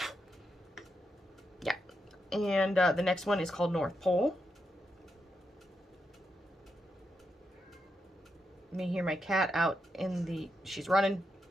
Yeah. And the next one is called North Pole. You may hear my cat out in the... She's running.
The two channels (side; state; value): both; normal; correlation 0.84